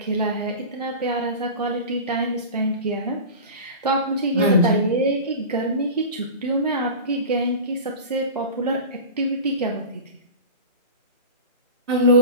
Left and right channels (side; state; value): both; inverted; correlation -0.31